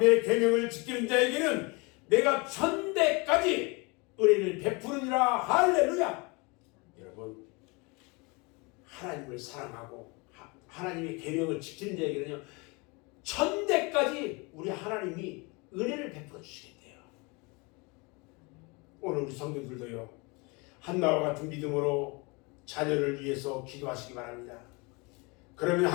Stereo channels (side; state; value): right; quieter; 28.2 dB